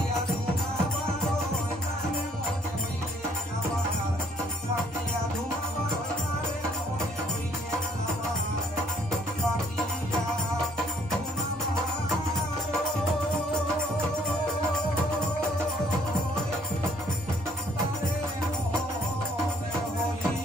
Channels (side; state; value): right; noise; rumble, 27 dB below the sound